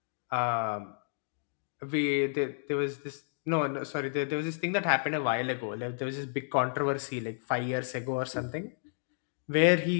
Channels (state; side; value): silent; right; digital silence